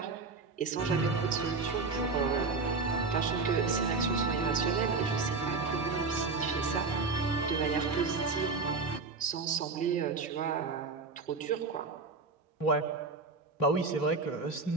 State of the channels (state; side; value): quieter; left; 4.1 dB